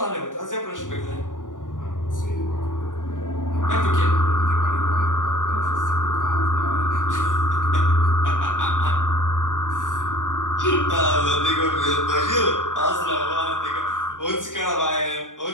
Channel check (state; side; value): late; right; 0.88 ms